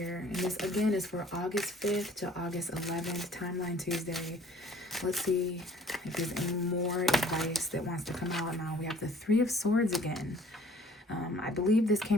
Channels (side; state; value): both; normal; correlation 0.54